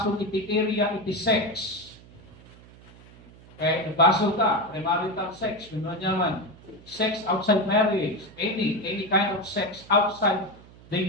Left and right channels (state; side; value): noise; right; hum, 22 dB below the sound